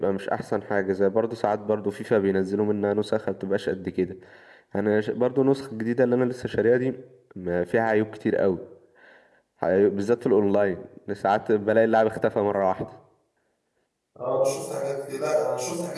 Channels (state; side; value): identical; both; correlation 1.00